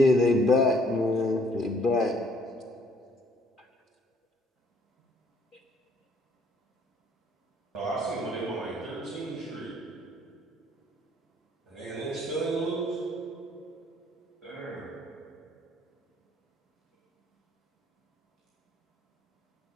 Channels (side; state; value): both; normal; correlation 0.62